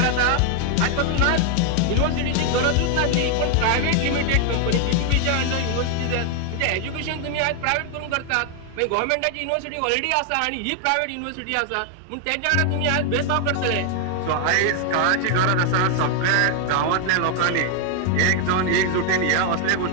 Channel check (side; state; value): both; different; correlation 0.00